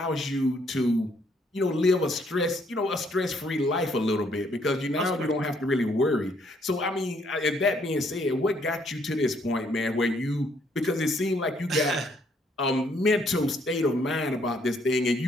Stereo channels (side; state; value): both; normal; correlation 0.68